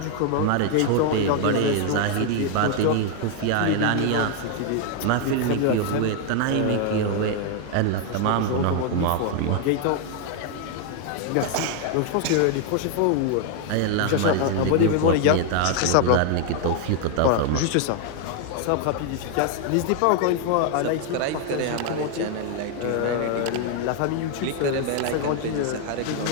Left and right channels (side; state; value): both; different; correlation 0.00